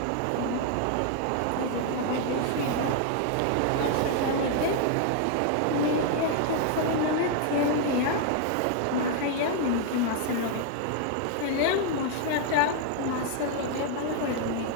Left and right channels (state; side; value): different; both; correlation 0.00